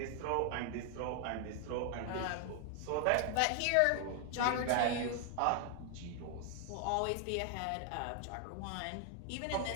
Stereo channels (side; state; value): both; different; correlation 0.00